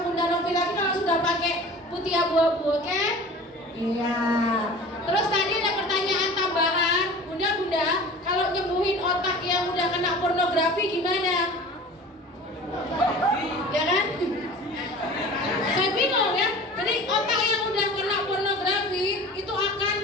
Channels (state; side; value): normal; both; correlation 0.40